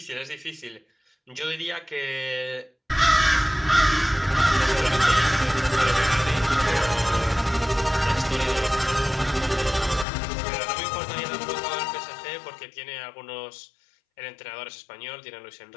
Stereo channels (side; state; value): right; drops out; at 10.1 s